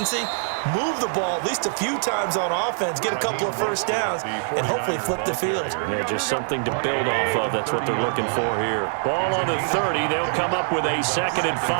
move the ball at least a few times on offense, get a couple of first downs, and hopefully flip the field. Yeah, just something to build off of. That's what they're looking for here. Ball on the 30. They'll come up with a 2nd and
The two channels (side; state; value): left; silent; 63 dB below the other